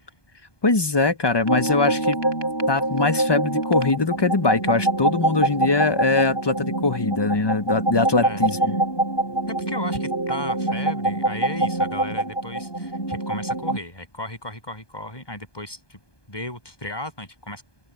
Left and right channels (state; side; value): late; right; 1.2 ms